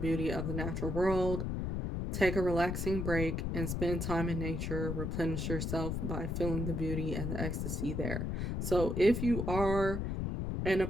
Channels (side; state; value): left; noise; rumble, 2 dB below the sound